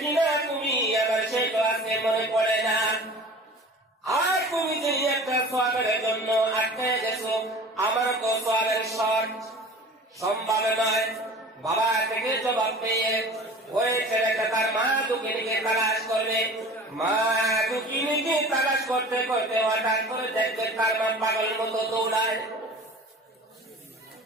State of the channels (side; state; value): both; normal; correlation 0.40